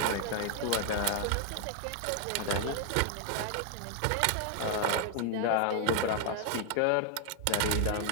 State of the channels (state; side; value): different; both; correlation 0.00